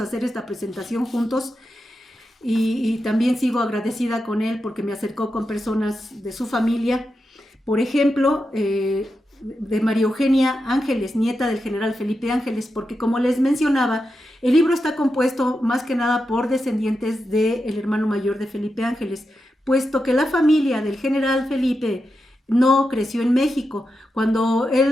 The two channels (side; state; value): both; normal; correlation 0.88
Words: esta presentación juntos, y también sigo agradecida con él porque me acercó con personas de su familia. Por ejemplo, de María Eugenia Ángeles, nieta del general Felipe Ángeles, porque como les mencionaba, el libro está compuesto más que nada por descendientes del hermano mayor de Felipe Ángeles, puesto que la familia del general Felipe no creció en México. Cuando